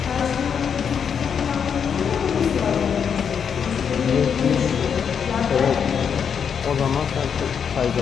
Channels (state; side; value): quieter; right; 7.2 dB